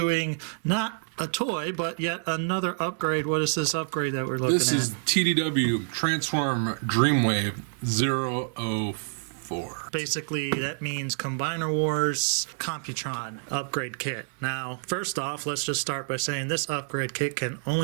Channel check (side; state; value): left; silent; 60 dB below the other